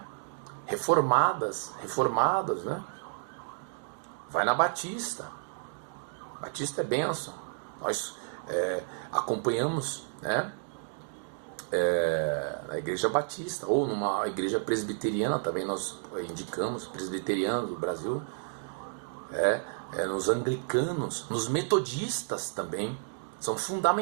reformadas, né? Vai na Batista. Batista é bênção. Nós acompanhamos, né? Na Igreja Batista, ou numa igreja presbiteriana, também nós indicamos, presbiteriana do Brasil, nos anglicanos, nos metodistas também, são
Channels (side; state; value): left; silent; digital silence